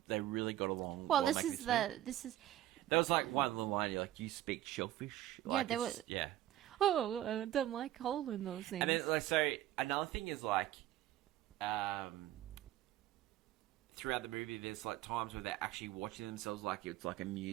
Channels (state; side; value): quieter; left; 13.6 dB